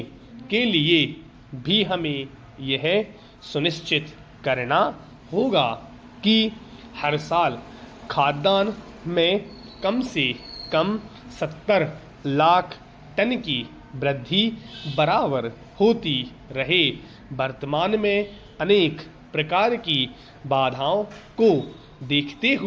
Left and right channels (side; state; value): both; identical; correlation 1.00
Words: के लिए भी हमें यह सुनिश्चित करना होगा कि हर साल खाद्यान्न में कम से कम 70 लाख टन की वृद्धि बराबर होती रहे। वर्तमान में अनेक प्रकार की बाधाओं को देखते